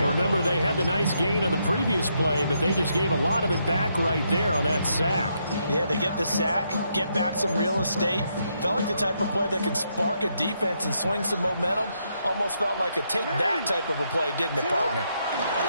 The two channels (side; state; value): both; inverted; correlation -0.78